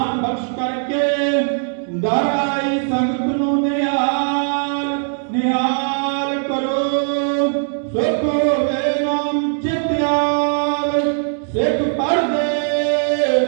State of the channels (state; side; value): silent; left; 66 dB below the other